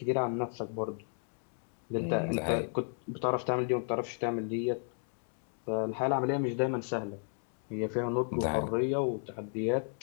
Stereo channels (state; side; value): silent; right; 55 dB below the other